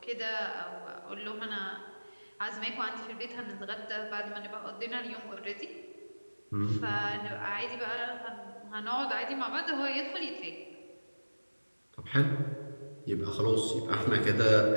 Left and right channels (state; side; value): inverted; both; correlation -1.00